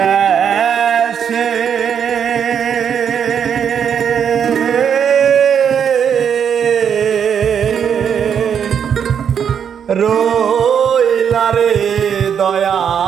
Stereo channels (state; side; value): quieter; left; 7.9 dB